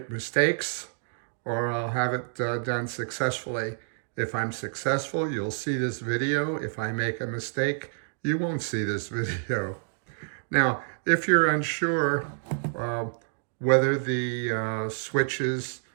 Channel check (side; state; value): left; silent; digital silence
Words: mistakes or I'll have it done successfully. If I'm successful, you'll see this video. If I make a mistake, you won't see this video. Now, if you're unsure whether the switches,